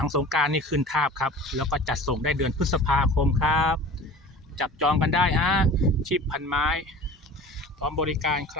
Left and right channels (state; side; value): normal; both; correlation 0.39